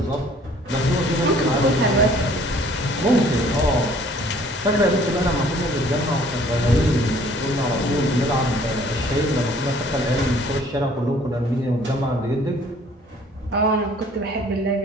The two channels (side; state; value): both; normal; correlation 0.56